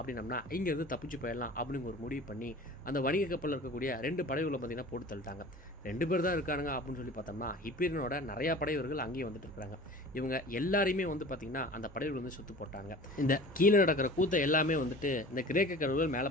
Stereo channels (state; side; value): normal; both; correlation 0.41